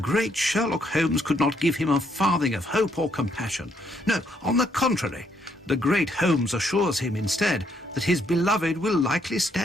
Sherlock Holmes could not give him a farthing of hope or compassion. No, on the contrary, the great Holmes assures him instead that his beloved will likely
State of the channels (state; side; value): normal; both; correlation 0.72